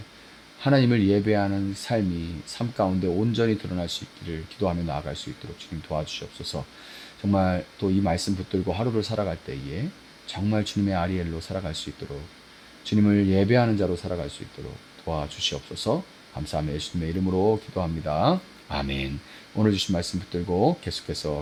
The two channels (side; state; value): both; identical; correlation 1.00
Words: 하나님을 예배하는 삶이 삶 가운데 온전히 드러날 수 있기를 기도하며 나아갈 수 있도록 주님 도와주시옵소서. 정말 또 이 말씀 붙들고 하루를 살아갈 때에 정말 주님의 아리엘로 살아갈 수 있도록 주님을 예배하는 자로 살아갈 수 있도록 도와주시옵소서. 감사하며 예수님의 이름으로 기도합니다. 아멘. 오늘 주신 말씀 붙들고